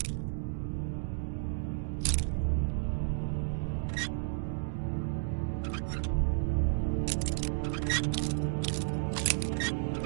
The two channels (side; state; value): left; silent; digital silence